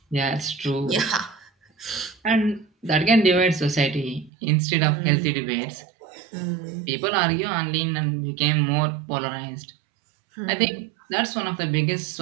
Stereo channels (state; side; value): drops out; left; at 4.3 s